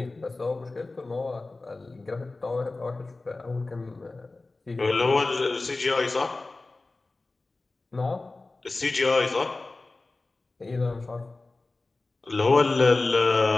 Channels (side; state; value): right; quieter; 3.3 dB